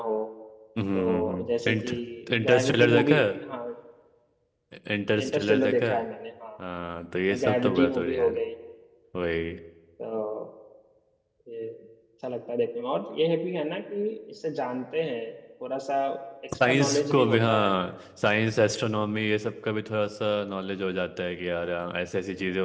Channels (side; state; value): both; identical; correlation 1.00